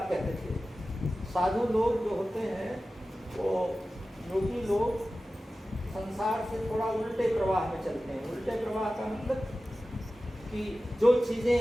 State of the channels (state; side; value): normal; both; correlation 0.95